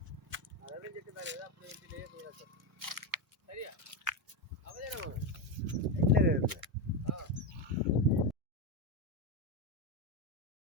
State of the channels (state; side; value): normal; both; correlation 0.12